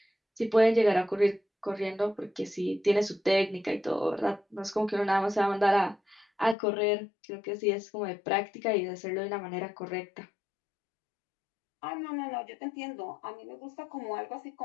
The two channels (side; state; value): right; drops out; at 6.6 s